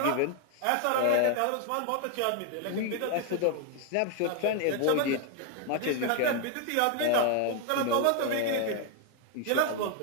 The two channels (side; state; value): both; different; correlation 0.01